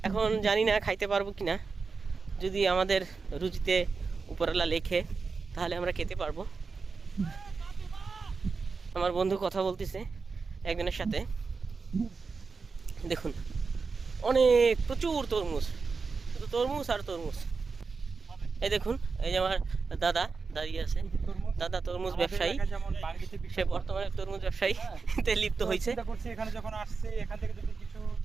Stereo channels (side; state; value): left; quieter; 4.6 dB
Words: এখন জানি না খাইতে পারবো কিনা, যদি আমাদের রুচিতে উপরওয়ালা লেখে তাহলে আমরা খেতে পারবো। আমার বন্ধু কথা বলতেছে একজনের সাথে, দেখুন অনেক প্রচুর তরমুজ, শুধু তরমুজ আর তরমুজ। এই দেখুন, এই যে আমার দাদা দাঁড়িয়ে আছে। দাদা তরমুজ ব্যবসায়ী, সে বর্তমানে তরমুজ ব্যবসায়ী তে লিপ্ত হয়েছে। চিন্তা করছি এখানে যখন আসছি এখান থেকে যদি কিছু